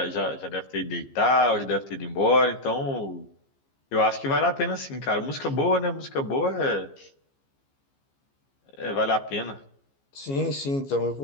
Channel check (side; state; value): right; late; 15 ms